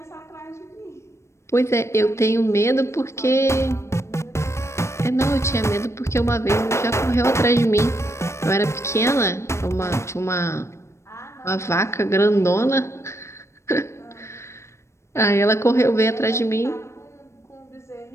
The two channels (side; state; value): right; late; 0.13 ms